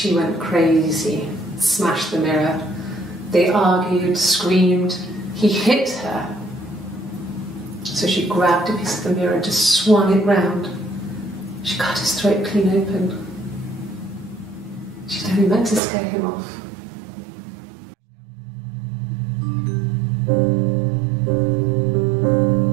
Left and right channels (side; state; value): left; drops out; at 15.8 s